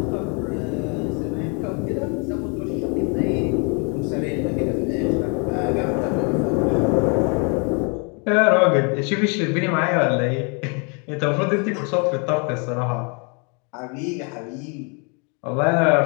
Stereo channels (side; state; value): right; quieter; 35.4 dB